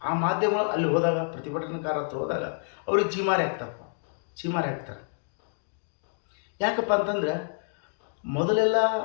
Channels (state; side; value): silent; right; digital silence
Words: ಆ ಮಾಧ್ಯಮಗಳು ಅಲ್ಲಿ ಹೋದಾಗ, ಪ್ರತಿಭಟನಾಕಾರ ಹತ್ರ ಹೋದಾಗ ಅವ್ರಿಗೆ ಚೀಮಾರಿ ಹಾಕ್ತಾರೆ. ಯಾಕಪ್ಪ ಅಂತಂದರೆ, ಮೊದಲೆಲ್ಲ